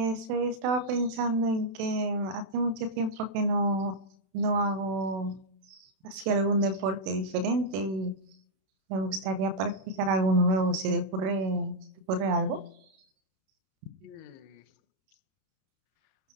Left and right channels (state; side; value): late; left; 31 ms